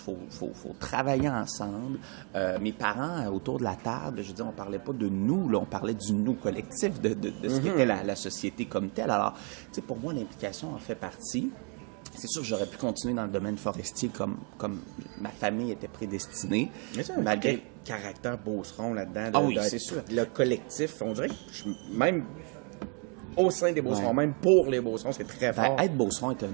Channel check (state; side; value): quieter; left; 37.1 dB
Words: travailler ensemble. Mes parents, autour de la table, je veux dire, on parlait pas de nous, là, on parlait du nous collectif, de ce qu'était la société comme telle. Alors, tu sais, pour moi, l'implication en fait partie. C'est sûr que j'aurais pu continuer dans le domaine forestier comme ma famille était prédestinée. Mais ça, malgré caractère beauceron là-dedans. Ah oui, c'est sûr. Le collectif, on dirait que même au sein des beaucerons, même pour les beaucerons, c'est très fort. Être beauceron est